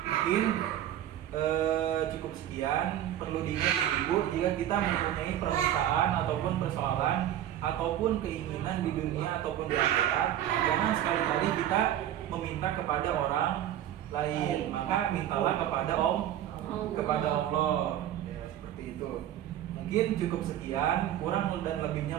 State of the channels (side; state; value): left; quieter; 11.6 dB